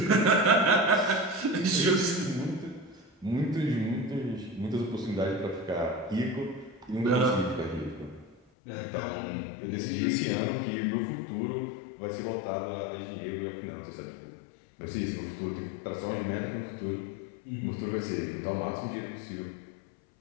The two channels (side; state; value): right; drops out; at 8.3 s